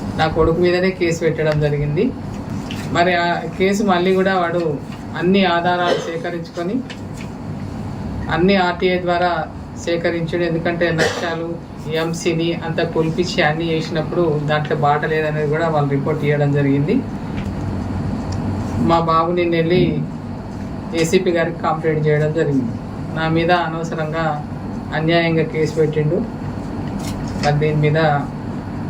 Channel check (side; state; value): both; identical; correlation 1.00